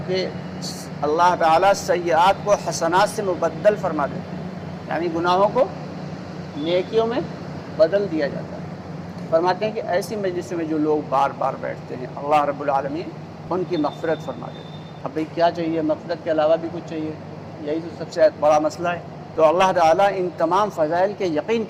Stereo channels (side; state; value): both; identical; correlation 1.00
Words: کے اللہ تعالیٰ سیئات کو حسنات سے مبدل فرما دیتے ہیں، یعنی گناہوں کو نیکیوں میں بدل دیا جاتا ہے۔ فرماتے ہیں کہ ایسی مجلسوں میں جو لوگ بار بار بیٹھتے ہیں اللہ رب العالمین ان کی مغفرت فرما دیتے ہیں۔ اب بھئی کیا چاہیے؟ مغفرت کے علاوہ بھی کچھ چاہیے؟ یہی تو سب سے بڑا مسئلہ ہے۔ تو اللہ تعالیٰ ان تمام فضائل کے یقین